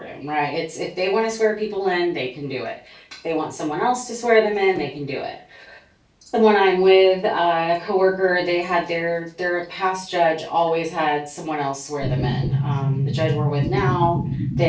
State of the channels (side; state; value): both; identical; correlation 1.00